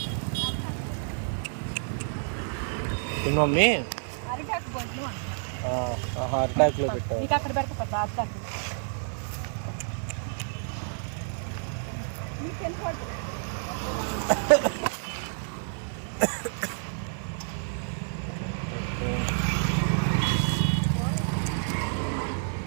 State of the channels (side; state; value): left; silent; digital silence